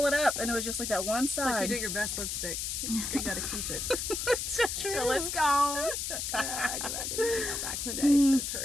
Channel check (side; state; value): left; noise; hiss, 3 dB below the sound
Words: it up, and it was just like that one It's like side. you do your best lipstick. You gotta keep it. So true. So let's go. I didn't know back in the day. So